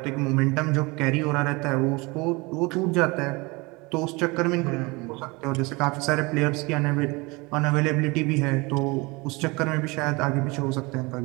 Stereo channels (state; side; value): quieter; left; 25.6 dB